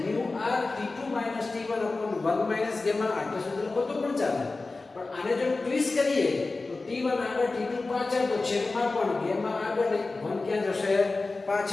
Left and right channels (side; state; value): right; quieter; 3.5 dB